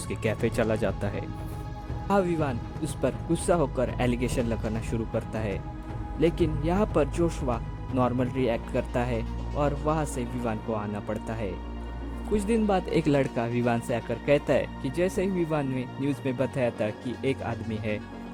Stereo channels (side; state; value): both; identical; correlation 1.00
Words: कैफ़े चला जाता है। विवान उस पर गुस्सा होकर एलिगेशन लगाना शुरू करता है, लेकिन यहाँ पर जोशुआ नॉर्मल रिएक्ट करता है और वहाँ से विवान को आना पड़ता है। कुछ दिन बाद एक लड़का विवान से आकर कहता है कि जैसे ही विवान ने न्यूज़ में बताया था कि एक आदमी है